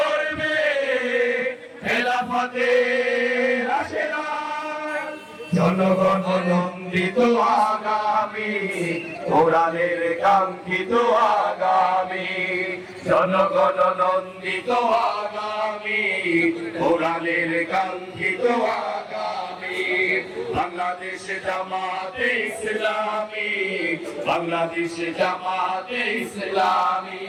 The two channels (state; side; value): identical; both; correlation 1.00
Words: খেলাফতের আশীর্বাদ। জনগণ নন্দিত আগামী, কোরআনের কাঙ্ক্ষিত আগামী। জনগণ নন্দিত আগামী, কোরআনের কাঙ্ক্ষিত আগামী। বাংলাদেশ জামাতে ইসলামী, বাংলাদেশ জামাতে ইসলামী,